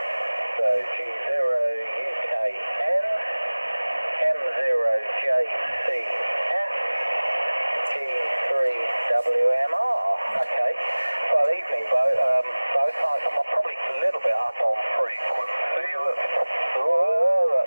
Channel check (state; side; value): inverted; both; correlation -1.00